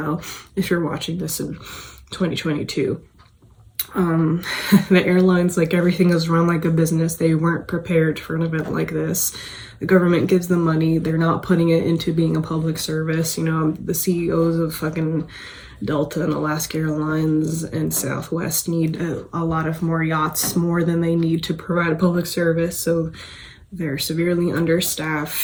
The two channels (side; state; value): both; identical; correlation 1.00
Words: if you're watching this in 2022, the airlines, like, everything is run like a business. They weren't prepared for an event like this. The government gives them money. They're not putting it into being a public service. You know, the CEOs of fucking Delta and Alaska Airlines and Southwest need a lot of more yachts, more than they need to provide a public service. So they're severely